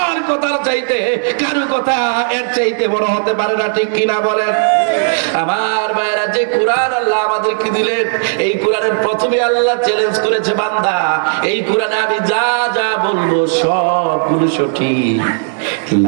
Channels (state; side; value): silent; left; digital silence